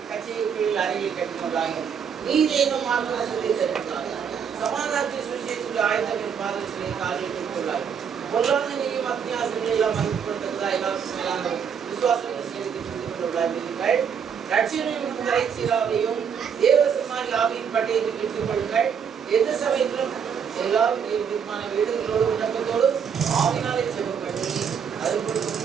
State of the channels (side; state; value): left; quieter; 7.2 dB